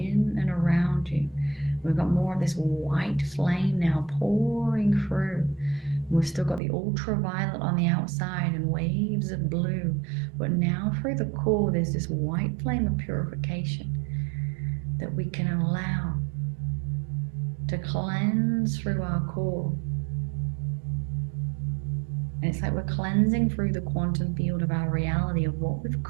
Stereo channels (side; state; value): left; drops out; at 6.6 s